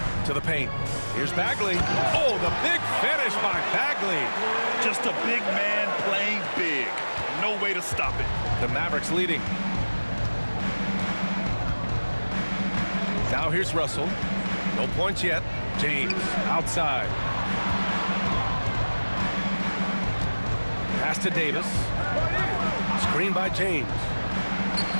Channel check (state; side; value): inverted; both; correlation -1.00